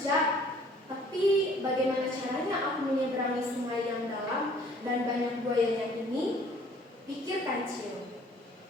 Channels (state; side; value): normal; both; correlation 0.56